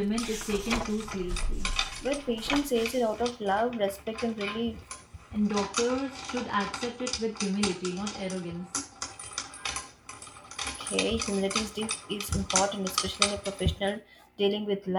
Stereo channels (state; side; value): identical; both; correlation 1.00